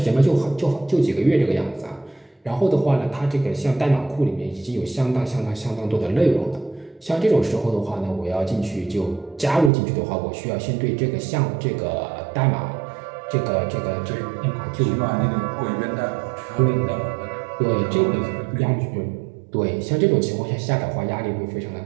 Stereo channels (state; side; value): drops out; left; at 9.7 s